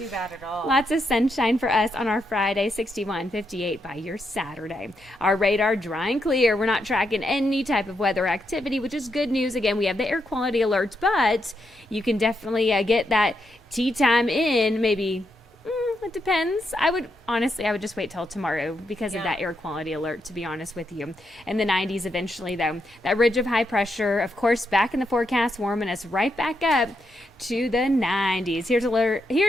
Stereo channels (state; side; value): normal; both; correlation 0.81